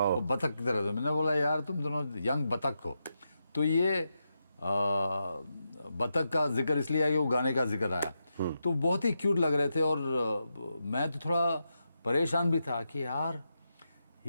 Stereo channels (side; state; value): both; inverted; correlation -0.86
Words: वो बतख की तरह। तो मैंने बोला यार तुम दोनों यंग बतख हो। तो ये बतख का जिक्र इसलिए आया कि वो गाने का जिक्र आया, तो बहुत ही क्यूट लग रहे थे। और मैं तो थोड़ा परेशान भी था कि यार